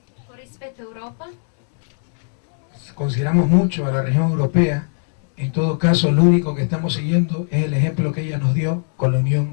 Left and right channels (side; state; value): right; silent; digital silence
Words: Con rispetto a Europa, consideramos mucho a la región europea. En todo caso, lo único que estamos siguiendo es el ejemplo que ella nos dio con la